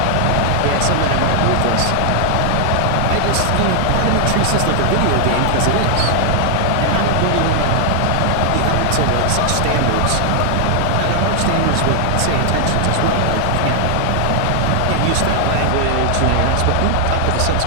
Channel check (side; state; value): both; different; correlation 0.00